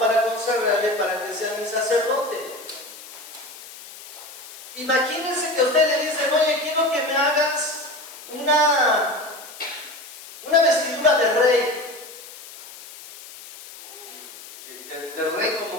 consagrarle, para que sea mi sacerdote. Imagínense que a usted le dicen, oye, quiero que me hagas una vestidura de rey. De rey,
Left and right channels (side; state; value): left; noise; hiss, 16 dB below the sound